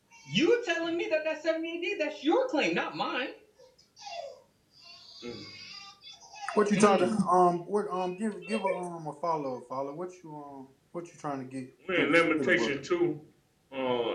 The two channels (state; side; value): identical; both; correlation 1.00